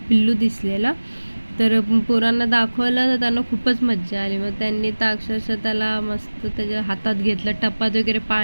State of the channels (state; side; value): inverted; both; correlation -1.00